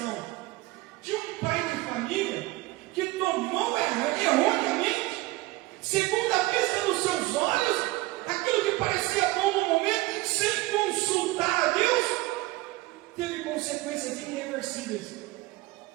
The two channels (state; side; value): quieter; left; 20.3 dB